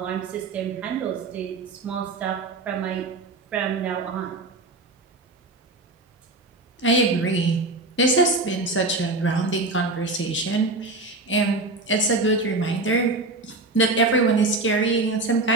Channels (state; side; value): quieter; left; 3.1 dB